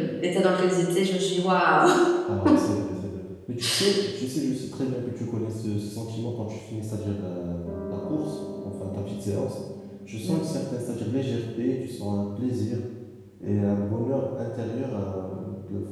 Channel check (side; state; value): both; identical; correlation 1.00